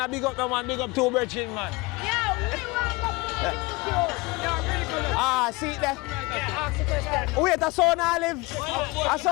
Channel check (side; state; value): right; quieter; 24.2 dB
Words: big up no man, big up two virgin man. Yeah, we want to See there? Wait, a son Olive. A